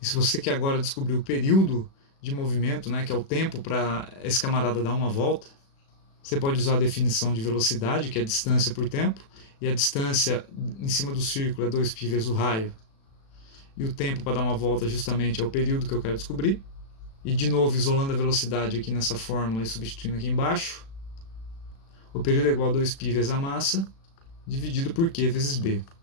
E se você quer agora descobrir o período de movimento, né, que é o tempo para esse camarada dar uma volta, você pode usar a definição de velocidade, que é a distância por tempo, e a distância em cima do círculo é 2π vezes o raio. E o tempo para dar uma volta justamente é o período que eu quero descobrir. E de novo, isolando a velocidade aqui nessa fórmula e substituindo aqui embaixo, o período é igual a 2π vezes a massa, dividido por Q vezes B.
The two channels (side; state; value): right; late; 36 ms